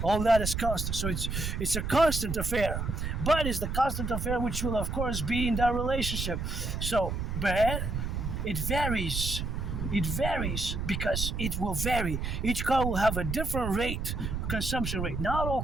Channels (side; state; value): right; noise; rumble, 3 dB below the sound